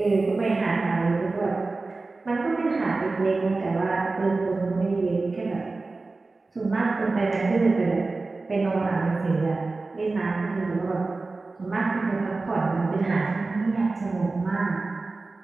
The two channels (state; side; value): quieter; left; 3.6 dB